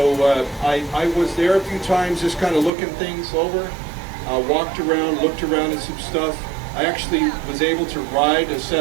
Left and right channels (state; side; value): drops out; left; at 2.7 s